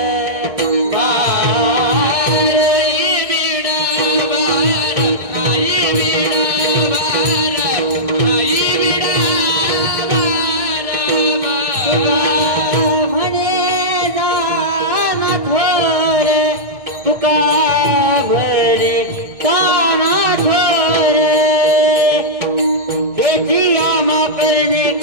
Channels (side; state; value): left; late; 1.6 ms